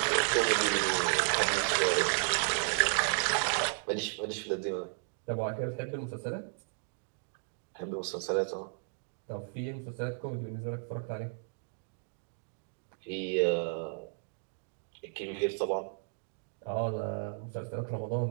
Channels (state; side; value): silent; left; digital silence